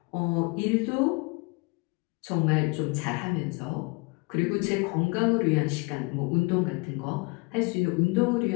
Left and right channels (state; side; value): quieter; right; 28.9 dB